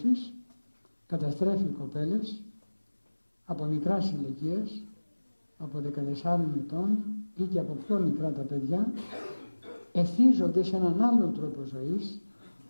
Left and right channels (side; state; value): both; inverted; correlation -1.00